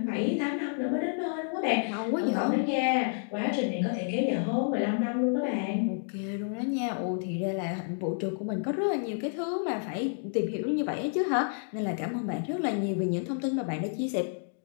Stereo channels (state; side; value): silent; right; digital silence